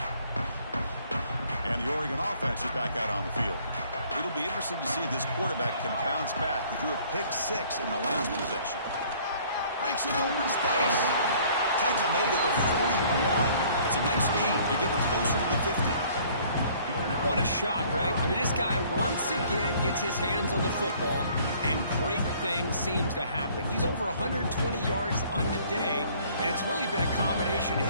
And the Oregon offense is back out on the field. It'll be interesting to see if this quarterback can bounce back. He threw a pick-6 in the last possession. Breaks it open space. Tackle made at the 41. It's a nice game. They're getting closer to the 50. What a shock, right? I mean, this guy once again gets his hands on the football, and great things seems to happen. He's over 120 yards on the day, and it's really been a combination of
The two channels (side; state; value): both; inverted; correlation -0.57